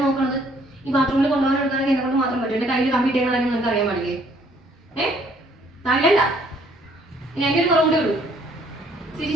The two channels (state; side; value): normal; both; correlation 0.63